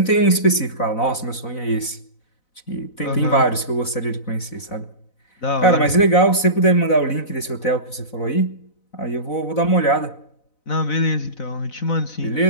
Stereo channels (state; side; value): late; right; 4.0 ms